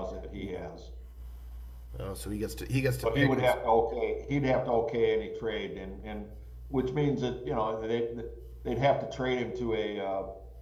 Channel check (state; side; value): identical; both; correlation 1.00